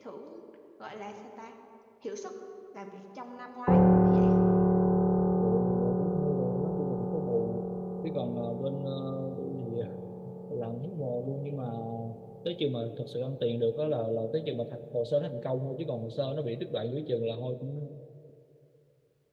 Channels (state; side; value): identical; both; correlation 1.00